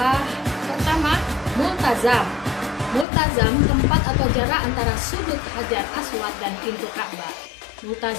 pertama, Multazam. Multazam tempat atau jarak antara sudut Hajar Aswad dan pintu Ka'bah.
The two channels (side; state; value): right; drops out; at 3.1 s